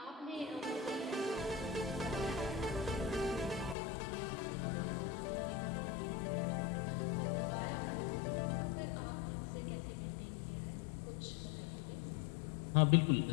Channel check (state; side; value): drops out; right; at 3.8 s